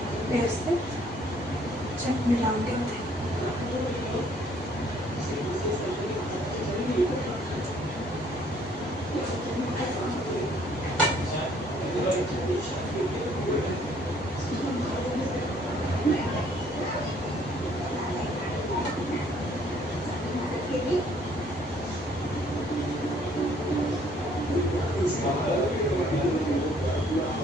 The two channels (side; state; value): both; normal; correlation 0.62